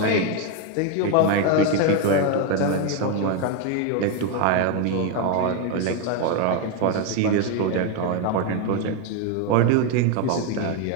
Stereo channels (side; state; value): both; different; correlation 0.02